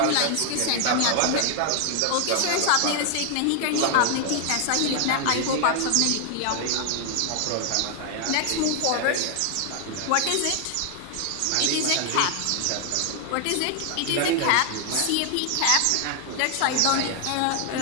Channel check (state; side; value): different; both; correlation 0.00